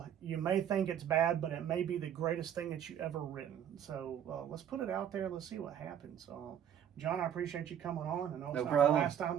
You may think it's bad, but it may be the greatest thing that you ever written. So let's put it out there. Let's see what happens. John, I appreciate you coming on. I know it's not the last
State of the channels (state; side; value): quieter; left; 9.5 dB